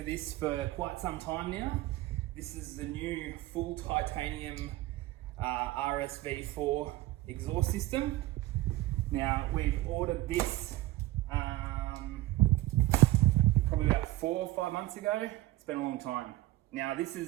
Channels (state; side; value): quieter; left; 16.8 dB